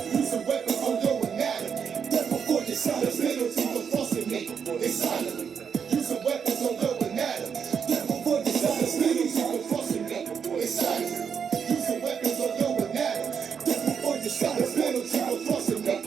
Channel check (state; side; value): quieter; left; 6.9 dB